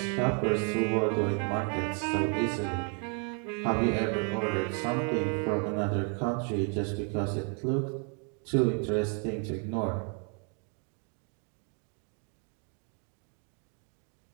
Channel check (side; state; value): left; quieter; 39.5 dB